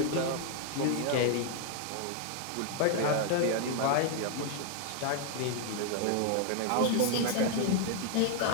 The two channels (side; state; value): both; different; correlation 0.00